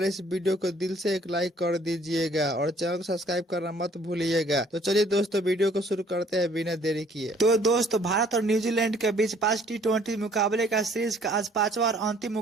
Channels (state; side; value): normal; both; correlation 0.59